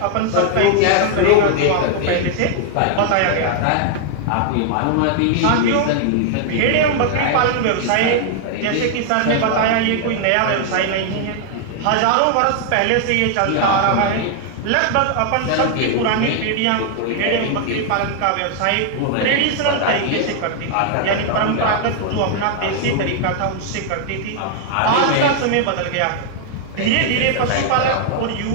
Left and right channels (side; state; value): both; different; correlation 0.00